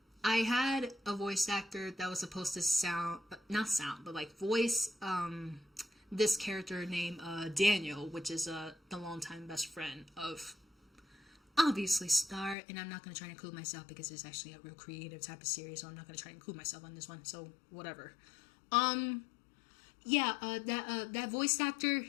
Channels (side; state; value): right; drops out; at 12.6 s